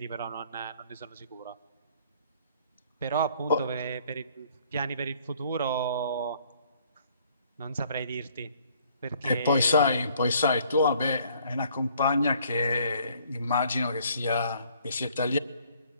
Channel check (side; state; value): both; inverted; correlation -0.61